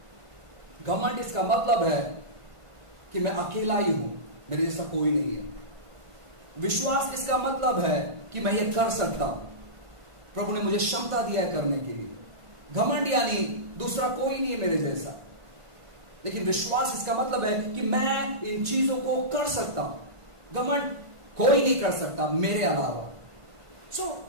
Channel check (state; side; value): late; left; 1.5 ms